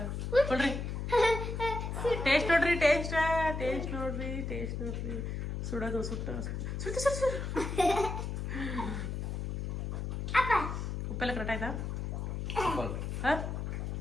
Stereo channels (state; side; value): noise; left; hum, 3 dB below the sound